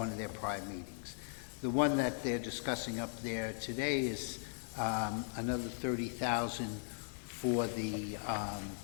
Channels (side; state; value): right; silent; 52 dB below the other